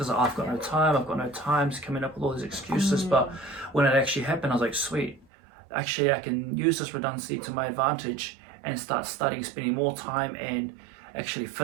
I've got no time, coming up with all these excuses. But when it actually happened, I was like, sweet, actually I can use this redundancy to my advantage and start studying, spending more time and actually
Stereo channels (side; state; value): left; drops out; at 5.2 s